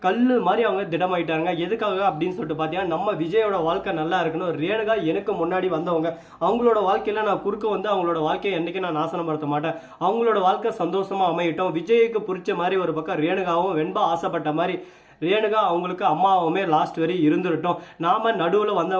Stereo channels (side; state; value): both; identical; correlation 1.00